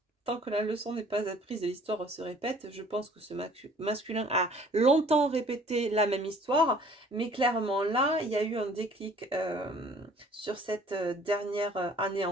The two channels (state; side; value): normal; both; correlation 0.54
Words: Tant que la leçon n'est pas apprise et l'histoire se répète, je pense que ce masculin a longtemps répété la même histoire, mais clairement là, il y a eu un déclic sur cette dernière année